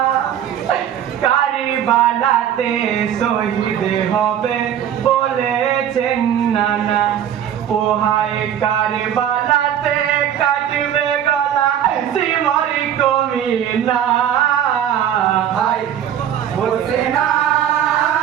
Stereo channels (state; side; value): quieter; left; 9.9 dB